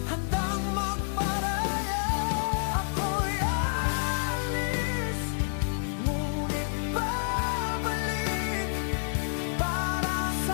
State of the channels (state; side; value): silent; right; digital silence